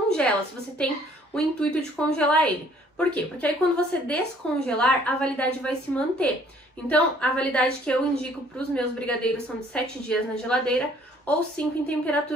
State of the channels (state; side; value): normal; both; correlation 0.59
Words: se você tem o intuito de congelar ele. Por quê? Porque aí quando você descongelar, a validade vai se manter. Então, a validade que eu indico para os meus brigadeiros são de 7 dias na geladeira ou 5 em